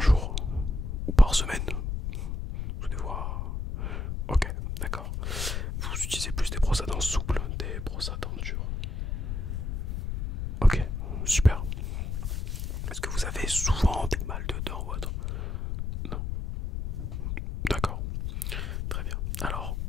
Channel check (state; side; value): noise; left; rumble, 2 dB below the sound